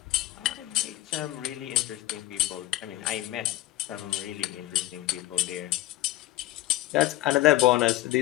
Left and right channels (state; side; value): quieter; right; 16.0 dB